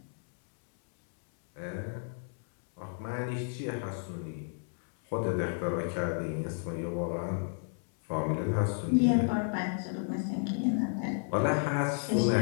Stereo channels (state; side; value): silent; right; 56 dB below the other